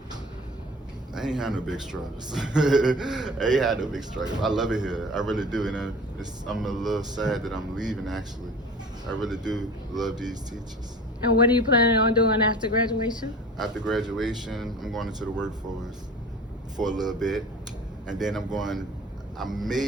I ain't had no big struggles. I ain't had no big struggles. I love it here. I really do. And I'm a little sad that I'm leaving, actually. I really do love these teachers. And what are you planning on doing after graduation? After graduation, I'm going into the workforce for a little bit. And then I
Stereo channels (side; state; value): both; normal; correlation 0.41